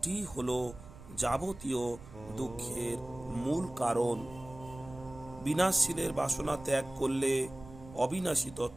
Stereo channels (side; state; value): right; noise; rumble, 17 dB below the sound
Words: হলো যাবতীয় দুঃখের মূল কারণ। বিনাশশীলের বাসনা ত্যাগ করলে অবিনাশী